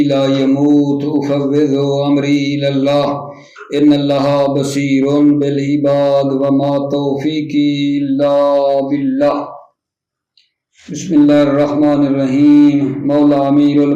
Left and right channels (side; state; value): both; identical; correlation 1.00